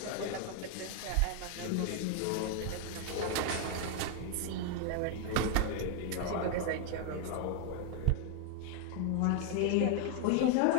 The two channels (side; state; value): both; different; correlation 0.00